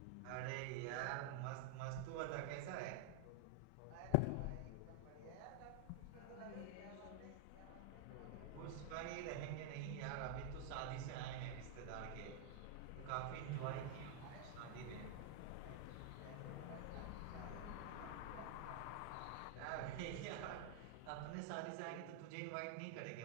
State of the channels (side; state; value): both; different; correlation 0.00